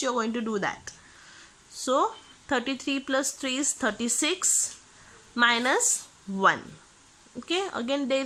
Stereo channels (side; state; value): both; identical; correlation 1.00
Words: you are going to do that. So 33 plus 3 is 36 minus 1. Okay, again there